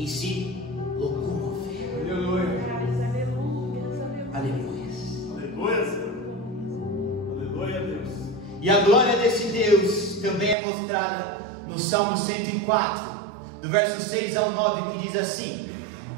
se locomover. Aleluia. Aleluia. Aleluia, Senhor. Aleluia, Deus. E a glória desse Deus também é mostrada no Salmo 104, do verso 6 ao 9, que diz assim:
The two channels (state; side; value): drops out; left; at 10.6 s